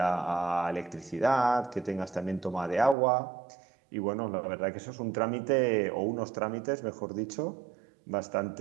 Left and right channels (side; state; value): left; drops out; at 3.0 s